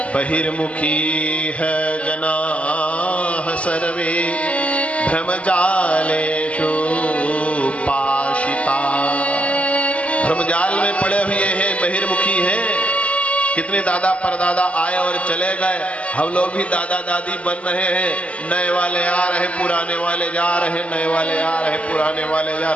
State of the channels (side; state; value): right; late; 0.063 ms